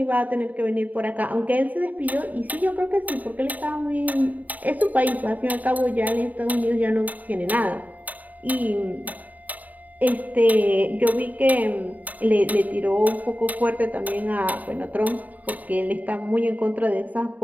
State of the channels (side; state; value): left; late; 0.076 ms